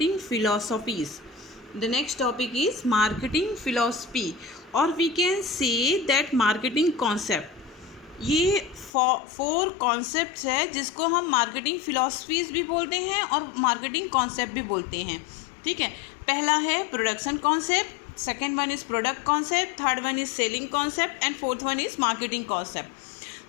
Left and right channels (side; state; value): right; drops out; at 8.9 s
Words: philosophies. The next topic is marketing philosophy, or we can say that marketing concept. ये four concepts है जिसको हम marketing philosophies भी बोलते हैं और marketing concept भी बोलते हैं. ठीक है, पहला है production concept, second one is product concept, third one is selling concept and fourth one is marketing concept.